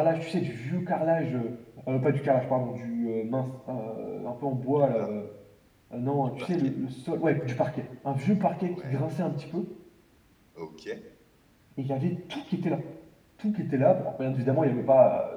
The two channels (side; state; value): both; identical; correlation 1.00